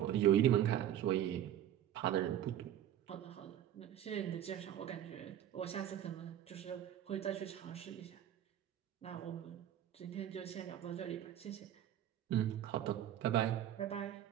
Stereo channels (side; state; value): left; quieter; 11.2 dB